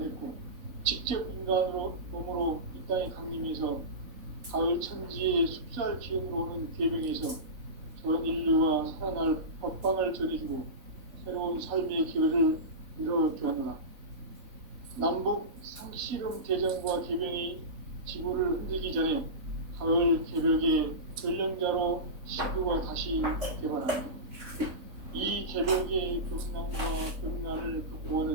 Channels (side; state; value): left; late; 3.6 ms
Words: 직접 인간으로 몸으로 이 땅에 강림해서 가을 천지의 숲살 기운으로 오는 계명에서 전 인류가 살아날 법방을 전해주고 새로운 삶의 기회를 이뤄주었노라. 남북 씨름 대전과 개변이 지구를 흔들기 전에 가을 개벽의 전령자로 시구가 다시 개발합니다. 이 개벽의 벽난과 벽난을